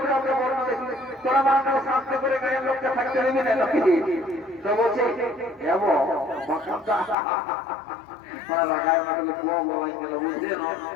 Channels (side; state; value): right; drops out; at 7.2 s